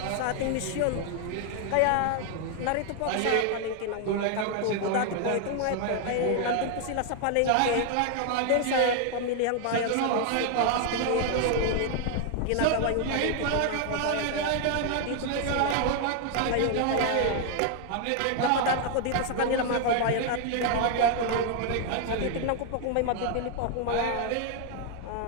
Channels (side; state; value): both; different; correlation 0.00